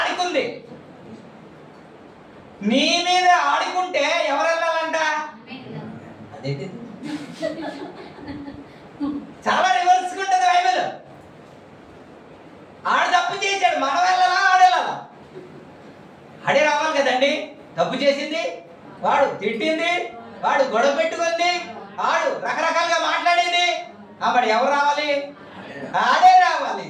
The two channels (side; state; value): both; identical; correlation 1.00